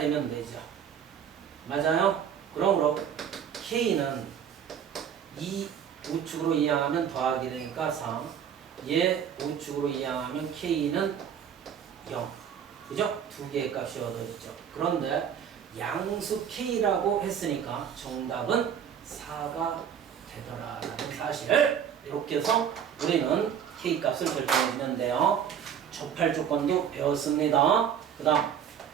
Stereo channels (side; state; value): left; quieter; 8.4 dB